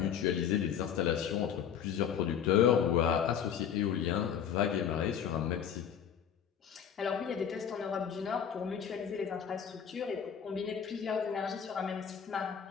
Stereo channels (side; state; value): right; quieter; 8.3 dB